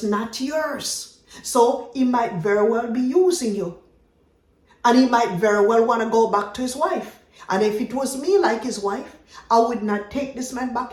not yours. So he might very well be using you. And he might very well want to go back to his wife. And if it was me like his wife, I would not take this man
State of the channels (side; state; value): both; identical; correlation 1.00